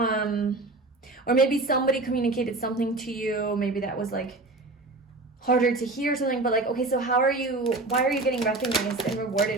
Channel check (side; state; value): left; quieter; 3.1 dB